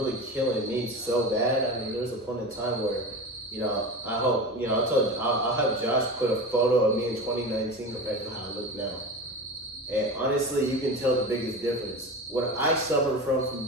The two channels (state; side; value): normal; both; correlation 0.29